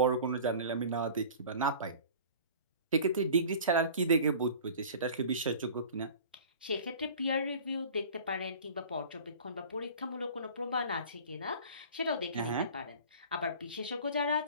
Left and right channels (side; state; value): both; inverted; correlation -0.41